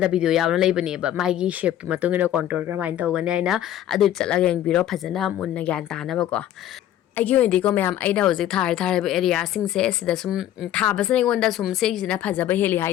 da video yawna leibani ba mai gi shape ki matungina contour karamaina tawgani aina adu chalaga yengbiro phajana munna gyan tana ba ko aigi ondi ko mayam aina hoji thar area sing se sida sum thabasna ngonda sum se sina phajaba heli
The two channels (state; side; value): quieter; right; 11.9 dB